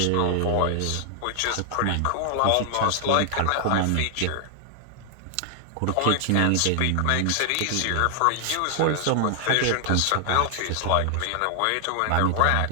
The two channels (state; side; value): different; both; correlation 0.00